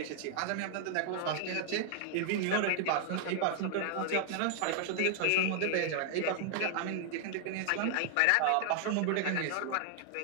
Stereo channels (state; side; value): different; both; correlation 0.00